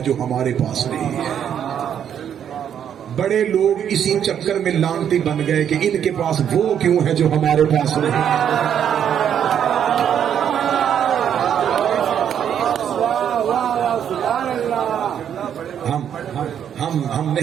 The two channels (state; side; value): quieter; left; 9.0 dB